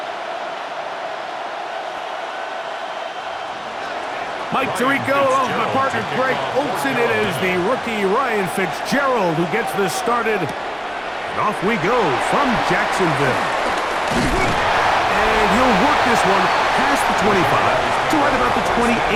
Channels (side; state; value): both; identical; correlation 1.00